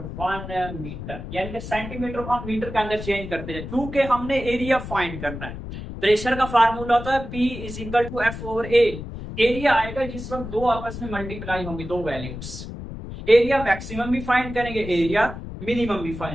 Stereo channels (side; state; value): left; noise; rumble, 9 dB below the sound